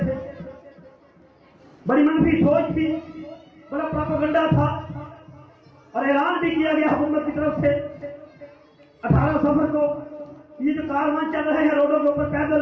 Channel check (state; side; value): identical; both; correlation 1.00